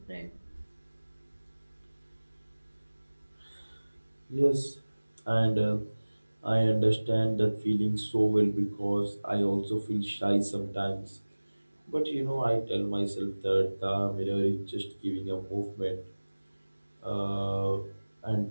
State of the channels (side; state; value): both; inverted; correlation -1.00